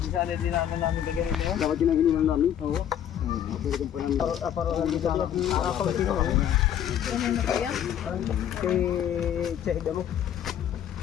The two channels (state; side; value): quieter; right; 10.0 dB